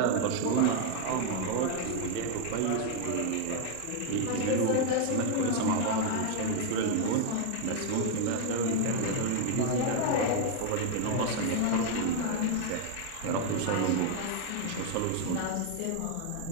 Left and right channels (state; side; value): different; both; correlation 0.00